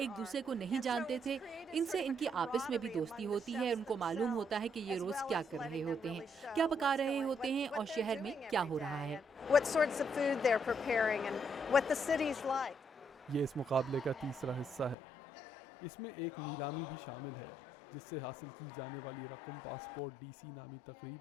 دوسرے کو نہیں جانتے تھے، ان سے ان کی آپس میں بھی دوستی ہوتی ہے، ان کو معلوم ہوتا ہے کہ یہ روز کیا کر رہے ہوتے ہیں، کیا پکا رہے ہوتے ہیں اور شہر میں کیا ہو رہا ہے۔ یہ اس مقابلے کا تیسرا حصہ ہے۔ اس میں ایک نیلامی بھی شامل ہے جس سے حاصل کی جانے والی رقم پاسپورٹ DC نامی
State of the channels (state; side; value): drops out; right; at 15.0 s